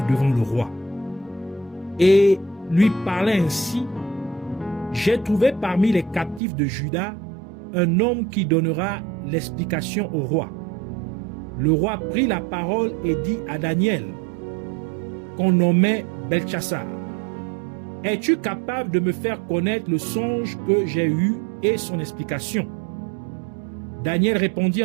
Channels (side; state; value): left; drops out; at 6.4 s